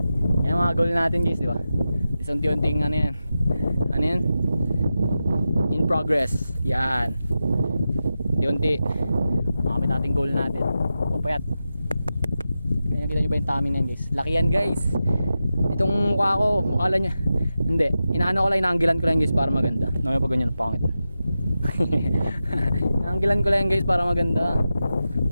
Yan mga goal natin guys, di ba? Unti-unting ano yan? Ano yan? In progress. Yan. Unti-unti. Makamit natin goal natin. Pupayat. Kaya kita nyo ba yung tummy na yan guys? Laki yan guys. Itong mukha ko, mukha niya. Hindi. Inaano ko lang, inaanggilan ko lang guys para maganda. Naman pag ganyan, pangit. Inaanggilan ko lang guys para maganda.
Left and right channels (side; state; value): both; inverted; correlation -0.91